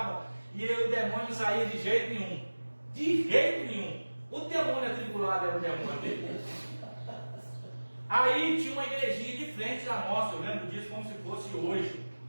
e o demônio não saía de jeito nenhum. De jeito nenhum. O demônio atribulado era o demônio dele. Aí tinha uma igrejinha de frente da nossa, eu lembro disso como se fosse hoje,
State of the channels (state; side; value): inverted; both; correlation -1.00